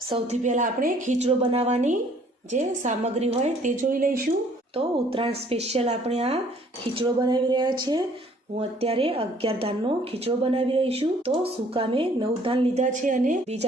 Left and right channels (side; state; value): both; normal; correlation 0.59